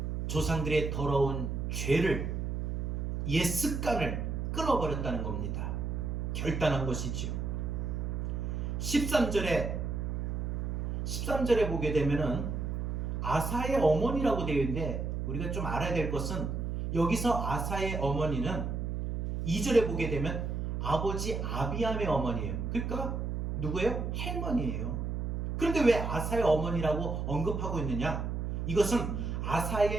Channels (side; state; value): right; noise; hum, 2 dB below the sound